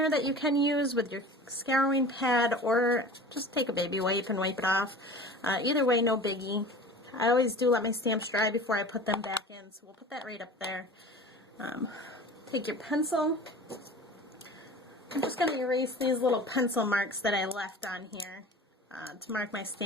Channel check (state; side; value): normal; both; correlation 0.39